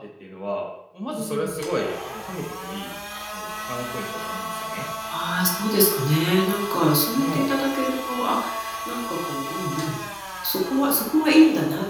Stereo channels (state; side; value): identical; both; correlation 1.00